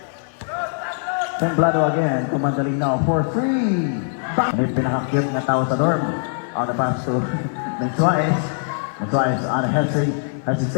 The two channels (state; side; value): silent; right; 58 dB below the other